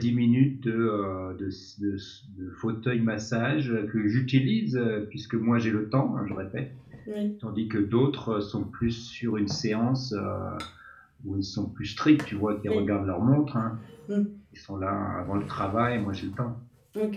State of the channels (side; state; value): both; identical; correlation 1.00